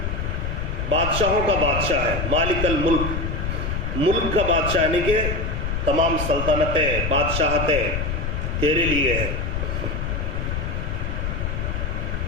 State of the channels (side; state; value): left; noise; rumble, 2 dB below the sound